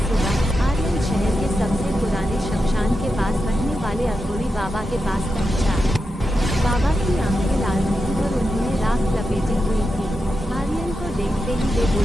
सुबह आर्यन शहर के सबसे पुराने शमशान के पास रहने वाले अघोरी बाबा के पास पहुंचा। बाबा की आंखें लाल थीं और उन्होंने राख लपेटी हुई थी। आर्यन को देखते ही वे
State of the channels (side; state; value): both; normal; correlation 0.88